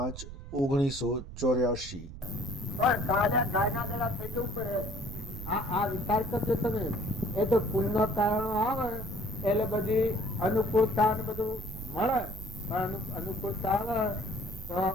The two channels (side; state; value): right; noise; rumble, 11 dB below the sound